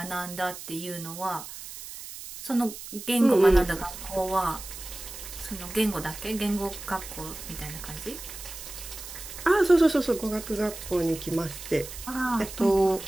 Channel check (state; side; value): noise; right; hiss, 12 dB below the sound